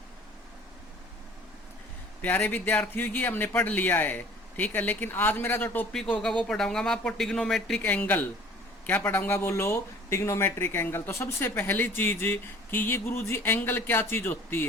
प्यारे विद्यार्थियों, ये हमने पढ़ लिया है, ठीक है। लेकिन आज मेरा जो टॉपिक होगा वो पढ़ाऊंगा मैं आपको टिग्नोमेट्रिक एंगल। क्या पढ़ाऊंगा बोलो? Trigonometric angle. तो सबसे पहली चीज कि ये गुरुजी एंगल क्या चीज होती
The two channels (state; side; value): normal; both; correlation 0.49